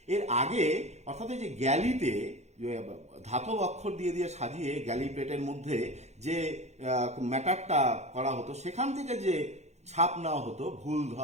এর আগে অর্থাৎ এই যে গ্যালিতে ধাতব অক্ষর দিয়ে দিয়ে সাজিয়ে গ্যালি প্লেটের মধ্যে যে ম্যাটারটা করা হতো, সেখান থেকে যে ছাপ নেওয়া হতো ভুল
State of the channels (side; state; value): left; late; 0.32 ms